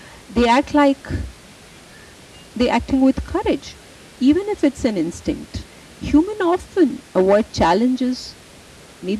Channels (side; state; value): both; identical; correlation 1.00